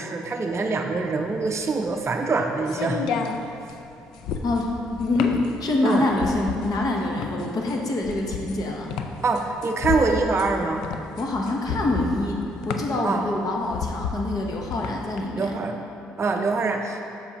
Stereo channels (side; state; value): both; normal; correlation 0.71